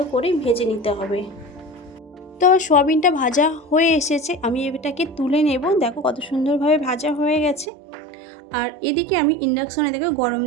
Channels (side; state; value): left; drops out; at 7.7 s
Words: করে ভেজে নিতে হবে। তো সোয়াবিনটা ভাজা হয়ে এসেছে, আমি এটাকে তুলে নেব। দেখো কত সুন্দরভাবে ভাজা হয়ে গেছে। আর এদিকে আমি ইন্ডাকশনে দেখো গরম